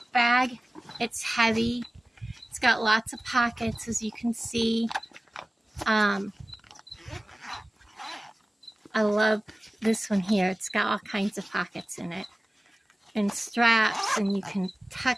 bag. It's heavy. It's got lots of pockets, as you can see. I love this one here. It's got all kinds of pockets in it and straps, and you can tuck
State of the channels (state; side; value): normal; both; correlation 0.97